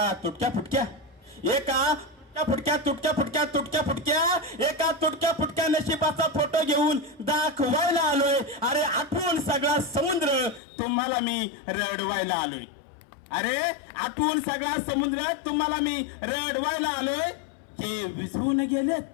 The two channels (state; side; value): drops out; right; at 10.6 s